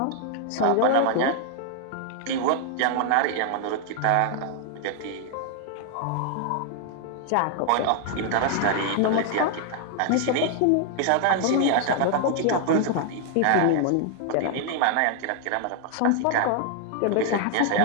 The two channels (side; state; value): both; different; correlation 0.00